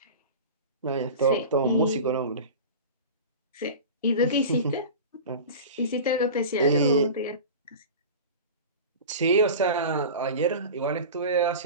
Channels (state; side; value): inverted; both; correlation -0.32